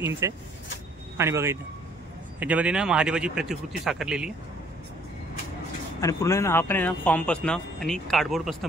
आहे. आणि बघा इथं याच्यामध्ये ना महादेवाची प्रतिकृती साकारलेली आहे. आणि पूर्ण ना हा पण आहे ना फॉर्मपासून आणि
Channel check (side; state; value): both; normal; correlation 0.60